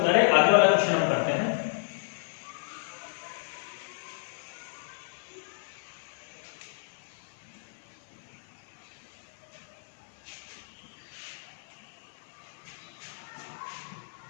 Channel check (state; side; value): silent; right; 56 dB below the other